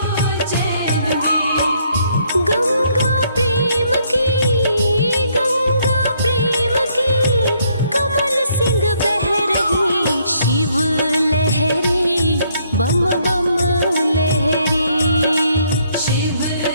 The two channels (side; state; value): both; inverted; correlation -0.69